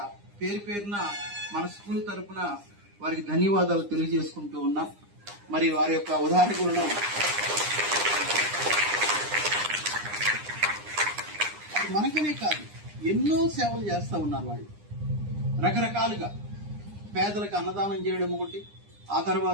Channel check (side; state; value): left; late; 9.8 ms